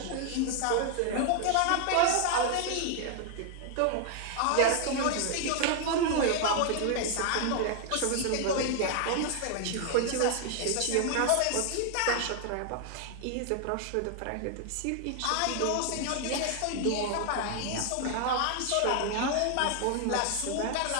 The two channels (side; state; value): both; different; correlation 0.00